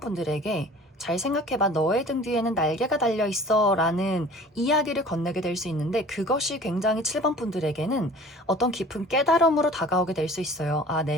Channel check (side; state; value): both; normal; correlation 0.46